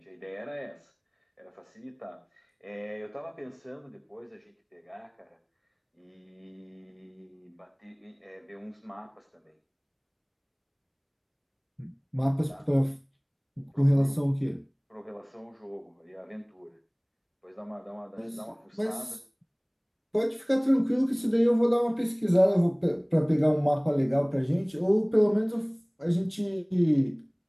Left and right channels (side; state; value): both; identical; correlation 1.00